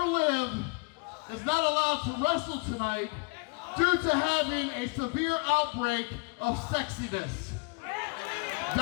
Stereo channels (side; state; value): right; quieter; 32.1 dB